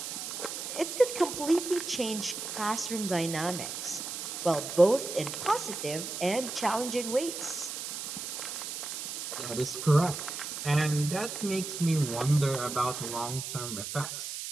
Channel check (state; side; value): noise; right; hiss, 6 dB below the sound